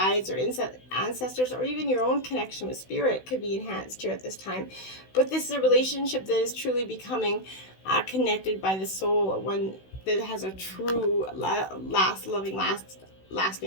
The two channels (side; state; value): right; late; 16 ms